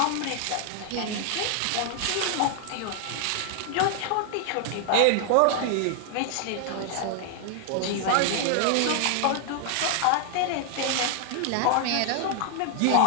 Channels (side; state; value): both; different; correlation 0.00